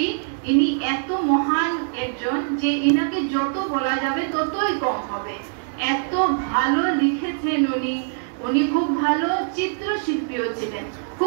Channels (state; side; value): silent; left; digital silence